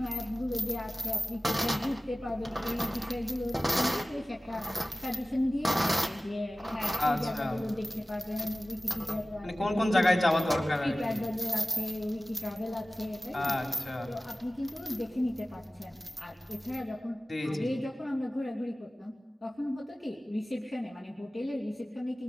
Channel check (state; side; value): normal; both; correlation 0.96